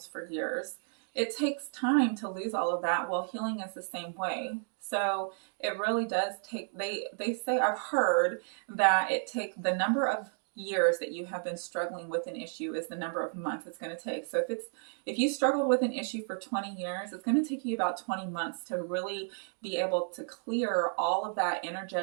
for years, it takes time to lose all of that. Well, healing is the same way. So it really does take, they say, I've heard that it takes the number of years that you have been struggling with an issue is the number of months it's going to take. So if you struggled with an issue for 20 years, it's going to take you about 20 months to really be able to clear all of that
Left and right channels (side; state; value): left; silent; 56 dB below the other